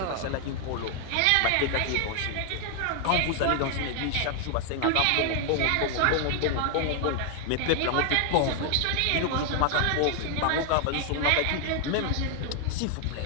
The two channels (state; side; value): different; both; correlation 0.00